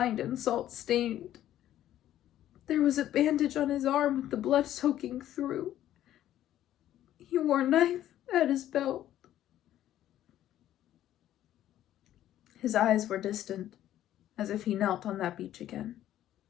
and salt-stained. There was a bandage on his arm with the blood soaking through. He wore a knife at his belt. His eyes were distant, as if he knelt on that beach again.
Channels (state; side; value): quieter; right; 12.4 dB